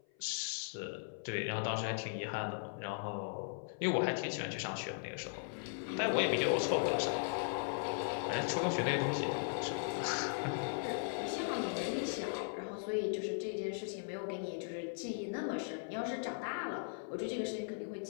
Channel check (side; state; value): right; silent; 52 dB below the other